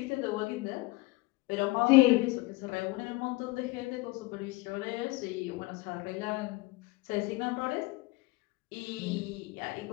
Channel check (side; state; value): right; quieter; 22.2 dB